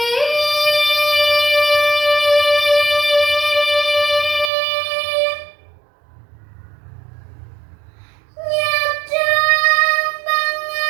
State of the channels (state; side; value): drops out; left; at 4.5 s